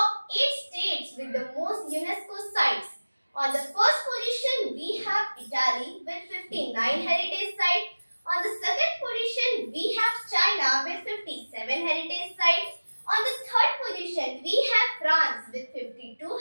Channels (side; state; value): both; inverted; correlation -1.00